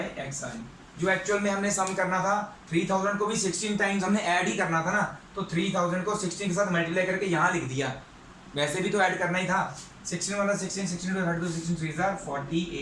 एक्स आई, जो एक्चुअल में हमने सम करना था 3000 को भी 16 टाइम्स हमने ऐड ही करना था ना, तो 3000 को 16 के साथ मल्टीप्लाई करके यहाँ लिख दिया, वैसे भी तो ऐड करना ही था। 16 वाला 16, 16 to 32, 16 3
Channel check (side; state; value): both; identical; correlation 1.00